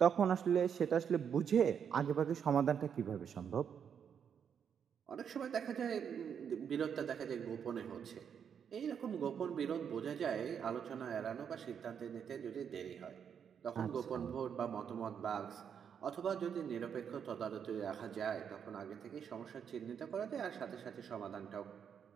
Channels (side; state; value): left; quieter; 7.7 dB